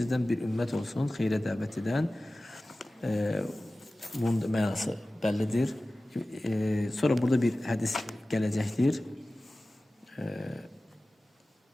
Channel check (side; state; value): both; normal; correlation 0.97